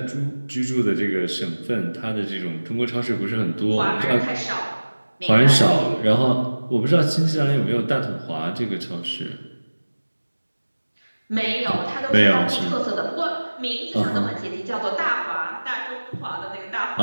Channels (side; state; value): both; inverted; correlation -1.00